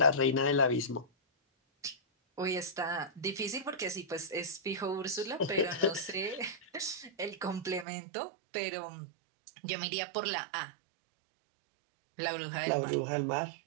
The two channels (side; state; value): left; drops out; at 7.9 s